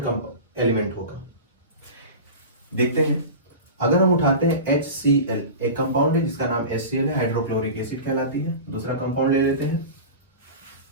एलिमेंट होगा? देखते हैं। अगर हम उठाते हैं HCl, एक कंपाउंड है जिसका नाम HCl है, हाइड्रोक्लोरिक एसिड कहलाती है। दूसरा कंपाउंड ले लेते हैं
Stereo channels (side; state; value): both; inverted; correlation -0.31